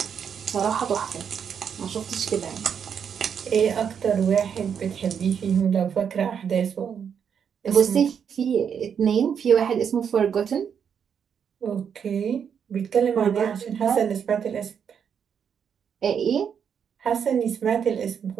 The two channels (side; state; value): left; quieter; 7.5 dB